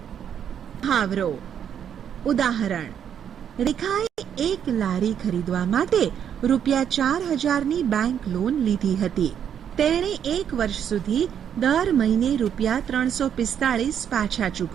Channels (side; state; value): left; quieter; 8.8 dB